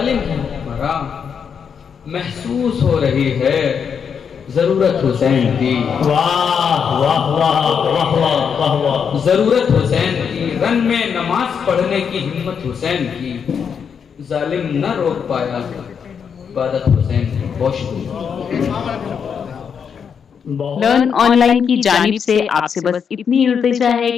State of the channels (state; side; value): quieter; right; 6.9 dB